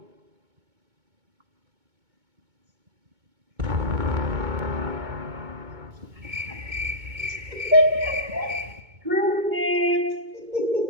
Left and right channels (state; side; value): late; left; 2.2 ms